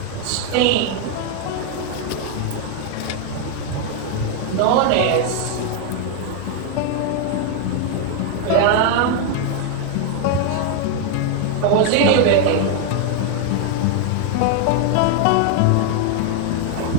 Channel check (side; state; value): both; different; correlation 0.00